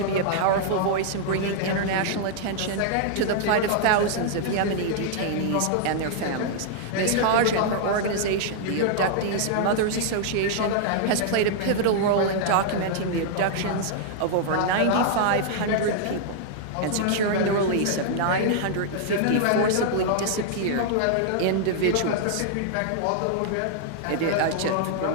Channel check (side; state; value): both; different; correlation -0.01